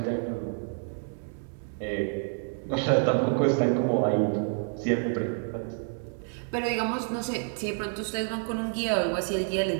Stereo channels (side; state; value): left; silent; 59 dB below the other